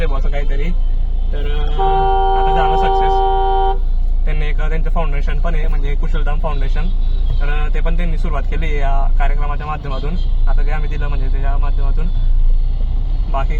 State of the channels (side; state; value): both; identical; correlation 1.00